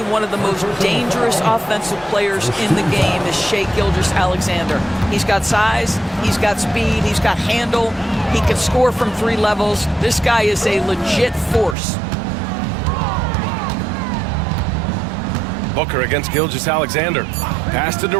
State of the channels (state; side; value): drops out; left; at 11.8 s